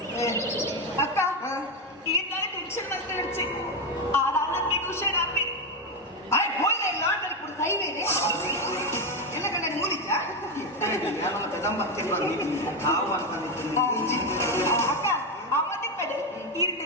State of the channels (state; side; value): normal; both; correlation 0.09